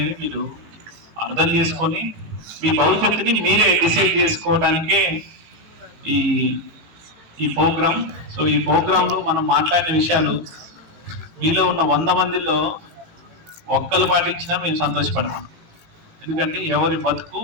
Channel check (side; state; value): left; late; 18 ms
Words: మీరు అర్థం చేసుకొని మీ భవిష్యత్తుని మీరే డిసైడ్ చేసుకోవడానికే ఈ ఈ ప్రోగ్రామ్. సో ఈ ప్రోగ్రాంలో మనం మాట్లాడిన విషయాలు మీలో ఉన్న 100 మందిలో ఒక్కరు పాటించినా మేము సంతోషపడతాం. ఎందుకంటే ఎవరి బతుకు